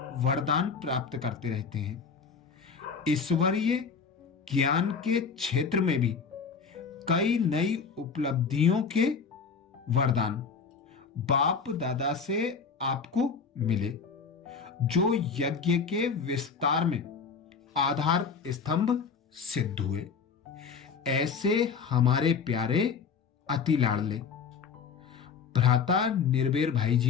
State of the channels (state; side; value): quieter; right; 5.8 dB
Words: वरदान प्राप्त करते रहते हैं। ईश्वरीय ज्ञान के क्षेत्र में भी कई नई उपलब्धियों के वरदान बाप दादा से आपको मिले, जो यज्ञ के विस्तार में आधार स्तंभ सिद्ध हुए। ऐसे हमारे प्यारे अति लाडले भ्राता निर्भय भाई